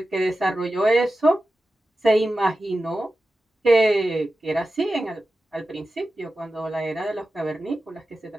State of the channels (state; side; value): normal; both; correlation 0.93